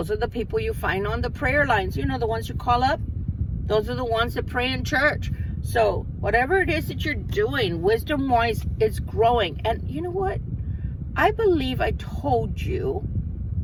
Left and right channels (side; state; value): both; identical; correlation 1.00